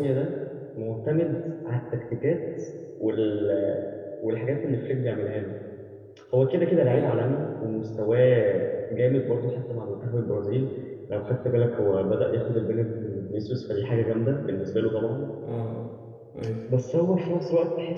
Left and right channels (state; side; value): identical; both; correlation 1.00